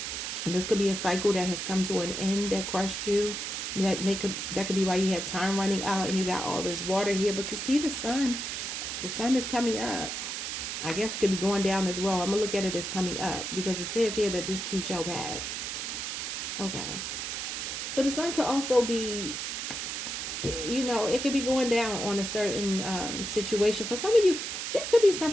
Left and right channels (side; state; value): right; noise; hiss, 4 dB below the sound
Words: And this could be a cycle that has come to an end that crushed you. That could be why you have time running out and you got all this water here. But you see the sun. The sun is coming up. I guess it could be going down as well. I'm going to look at it as coming up, because it says here that this too shall pass. Okay. So the sun could also be, you know, it could be going down on a certain situation. For some of you, there could be